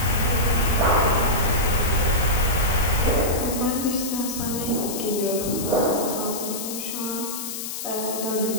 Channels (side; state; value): left; noise; hiss, 6 dB below the sound